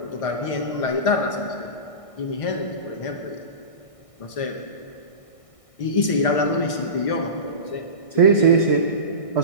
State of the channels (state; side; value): late; right; 1.6 ms